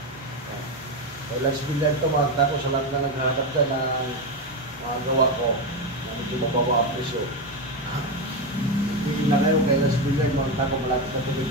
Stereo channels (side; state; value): both; normal; correlation 0.12